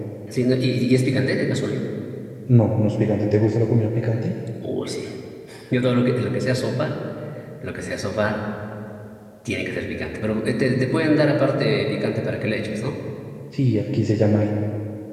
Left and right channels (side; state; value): both; identical; correlation 1.00